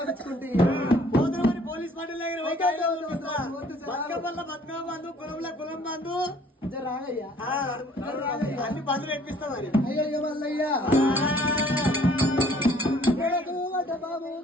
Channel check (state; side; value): normal; both; correlation 0.57